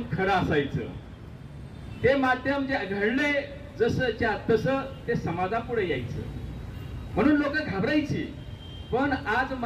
खरं असायचं. ते माध्यम जे घडले जसंच्या तसं ते समाजापुढे यायचं. म्हणून लोक घाबरायची. पण आज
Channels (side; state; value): both; identical; correlation 1.00